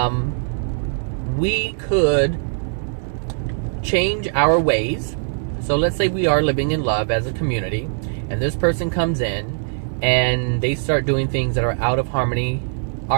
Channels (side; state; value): left; silent; digital silence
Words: We could change our ways. So let's say we are living in love as a community, and this person comes in and they start doing things that are out of harmony